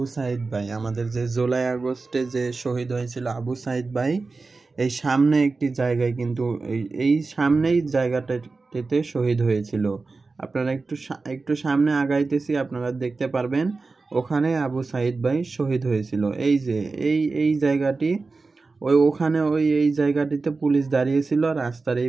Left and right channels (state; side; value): quieter; left; 3.9 dB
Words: সাইদ ভাই, আমাদের যে জুলাই আগস্টে যে শহীদ হয়েছিল আবু সাইদ ভাই, এই সামনে একটি জায়গায় কিন্তু এই সামনেই জায়গাটাতে শহীদ হয়েছিল। আপনারা একটু সামনে আগাইতেছি, আপনারা দেখতে পারবেন ওখানে আবু সাইদ ভাই শহীদ হয়েছিল। এই যে এই জায়গাটি, ওখানে এই জায়গাটিতে পুলিশ দাঁড়িয়েছিল, রাস্তার এই